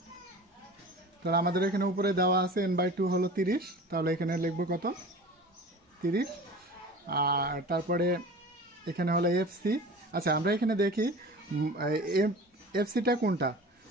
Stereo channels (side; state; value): both; normal; correlation 0.38